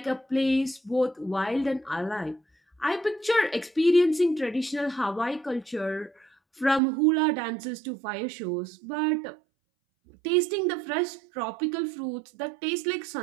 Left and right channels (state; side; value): drops out; left; at 6.8 s